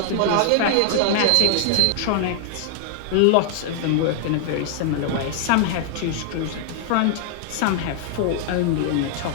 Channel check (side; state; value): both; different; correlation 0.00